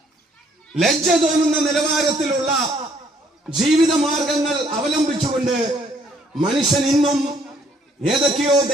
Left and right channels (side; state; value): both; normal; correlation 0.65